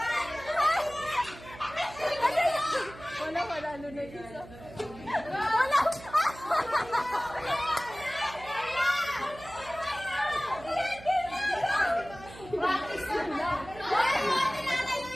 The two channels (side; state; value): right; noise; hum, 17 dB below the sound